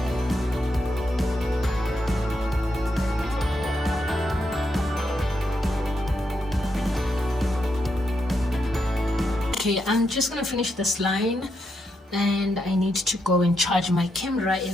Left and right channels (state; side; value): normal; both; correlation 0.82